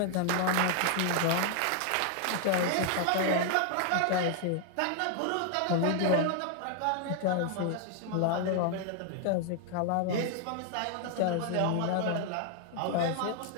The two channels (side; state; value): both; different; correlation 0.00